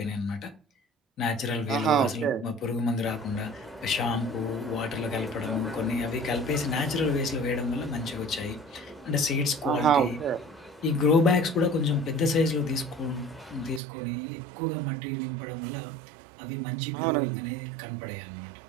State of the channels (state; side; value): drops out; left; at 13.8 s